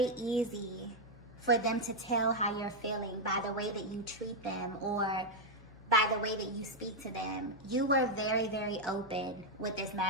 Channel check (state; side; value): noise; left; hum, 21 dB below the sound